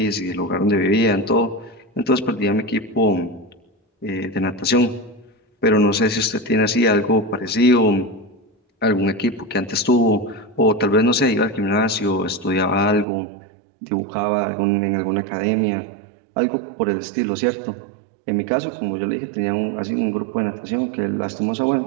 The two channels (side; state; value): left; drops out; at 13.1 s